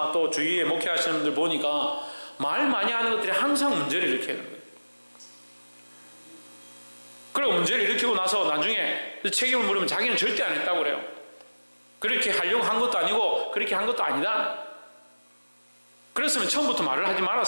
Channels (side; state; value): both; inverted; correlation -1.00